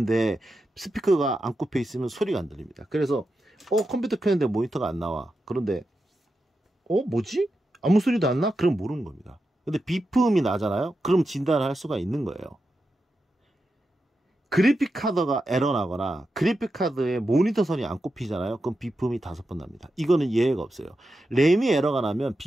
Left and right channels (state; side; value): normal; both; correlation 0.89